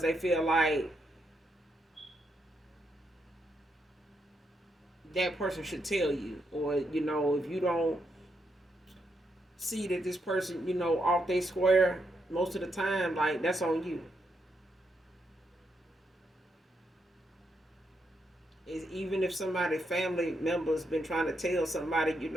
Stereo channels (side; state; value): both; normal; correlation 0.80